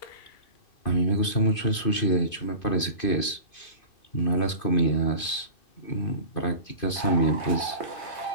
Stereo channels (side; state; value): right; late; 2.5 ms